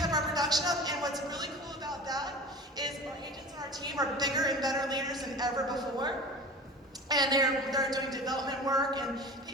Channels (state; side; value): normal; both; correlation 0.36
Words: our production up. And what's really cool about that is our agents on our team are bigger and better leaders than ever before. And they're doing development work, and